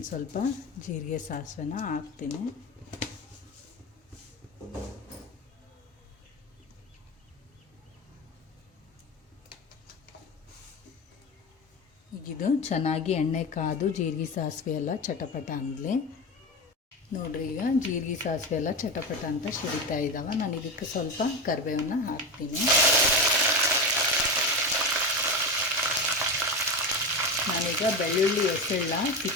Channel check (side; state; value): both; normal; correlation 0.20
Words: ಸ್ವಲ್ಪ ಜೀರಿಗೆ ಸಾಸಿವೆನ ಹಾಕ್ತೀನಿ. ಈಗಿದು ಚೆನ್ನಾಗಿ ಎಣ್ಣೆ ಕಾದು ಜೀರಿಗೆ ಸಾಸಿವೆ ಎಲ್ಲ ಚಟಪಟ ಅಂದಲಿ. ನೋಡ್ರಿ, ಈಗ ಜೀರಿಗೆ ಸಾಸಿವೆ ಎಲ್ಲ ಚಟಪಟ ಅಂತ ಸಿಡಿತಾ ಇದ್ದಾವೆ. ನಾನು ಇದಕ್ಕೆ ಸ್ವಲ್ಪ ಕರಿಬೇವನ್ನ ಹಾಕ್ತೀನಿ. ನಾನೀಗ ಬೆಳ್ಳುಳ್ಳಿ ಎಸೆಳ್ಳ